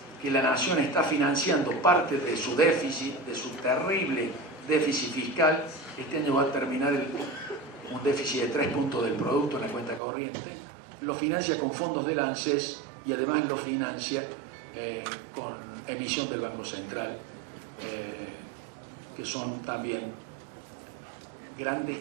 que la Nación está financiando parte de su déficit, de su terrible déficit fiscal. Este año va a terminar un déficit de 3 puntos del producto en la cuenta corriente. Lo financia con fondos del ANSES y además lo financia con emisión del Banco Central, que son también grandes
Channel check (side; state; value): left; drops out; at 10.0 s